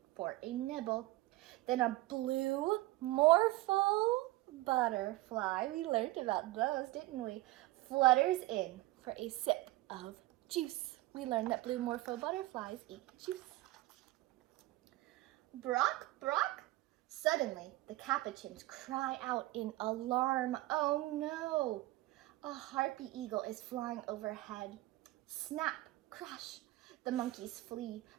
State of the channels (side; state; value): left; quieter; 18.8 dB